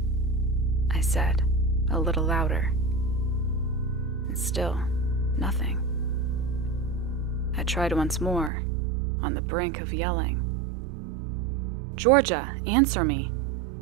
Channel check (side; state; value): left; drops out; at 8.5 s